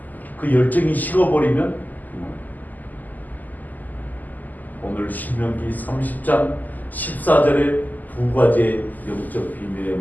그 열정이 식어버리면 오늘 신명기 30장 14절에 두 가지의 영적 비밀의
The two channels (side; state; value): right; late; 0.083 ms